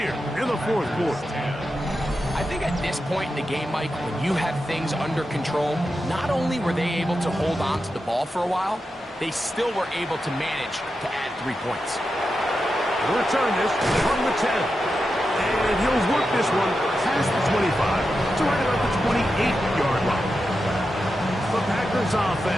in the 4th quarter. I think at this point in the game, Mike, when you have things under control, not only were they able to hold on to the ball for a while, they still were able to manage to add 3 points. He'll return this from the 10. And he'll work this one past the 25 to right about the 28-yard line. The Packers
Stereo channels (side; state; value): both; normal; correlation 0.89